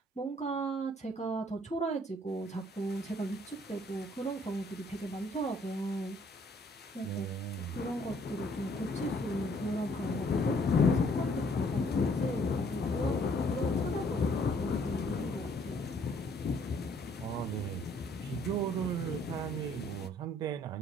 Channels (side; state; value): both; normal; correlation 0.63